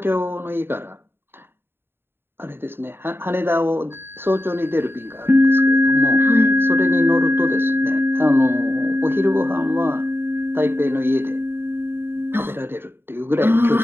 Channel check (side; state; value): left; late; 0.11 ms